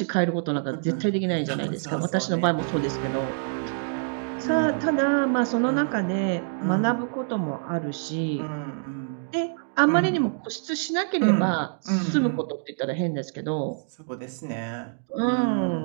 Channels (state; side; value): silent; left; digital silence